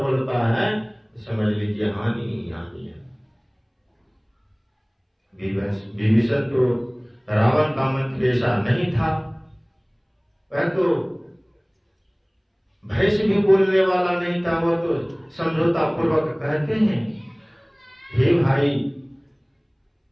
बोलता है तो समझ लीजिए हानि ही हानि है। विभीषण तो रावण का मंत्री ऐसा नहीं था, वह तो भय से भी बोलने वाला नहीं था। वो तो समझौता पूर्वक कहते हैं हे भाई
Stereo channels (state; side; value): identical; both; correlation 1.00